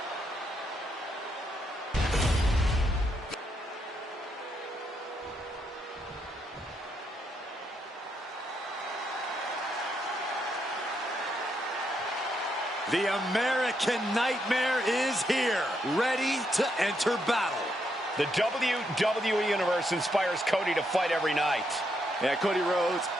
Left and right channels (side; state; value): both; normal; correlation 0.78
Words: The American Nightmare is here, ready to enter battle. The WWE Universe inspires Cody to fight every night. Yeah, Cody Rhodes